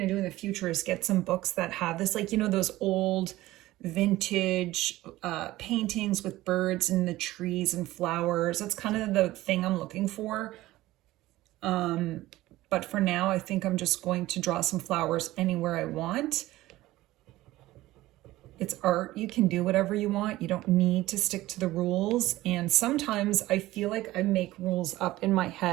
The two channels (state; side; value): quieter; left; 17.0 dB